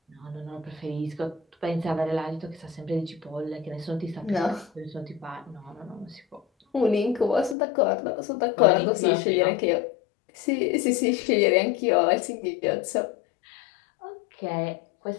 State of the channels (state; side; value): drops out; right; at 7.6 s